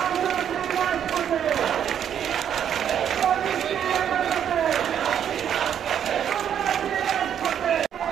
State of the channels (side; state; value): left; quieter; 9.2 dB